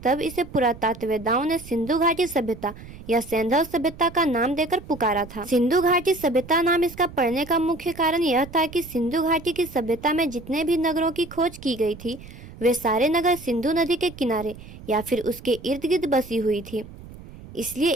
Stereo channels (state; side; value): noise; right; rumble, 16 dB below the sound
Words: इसे पुरातत्ववेदाओं ने सिंधु घाटी सभ्यता या सैंधव सभ्यता का नाम देकर पुकारा था। सिंधु घाटी सभ्यता नाम इसका पड़ने का मुख्य कारण यह था कि सिंधु घाटी की सभ्यता में जितने भी नगरों की खोज की गई थी, वे सारे नगर सिंधु नदी के किनारे या फिर उसके इर्द गिर्द बसी हुई थी। इसलिए